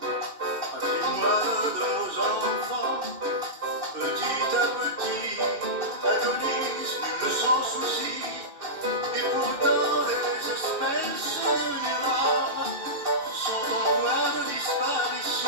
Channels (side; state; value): left; late; 2.7 ms